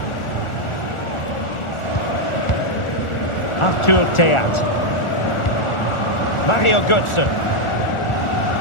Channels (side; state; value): right; late; 1.4 ms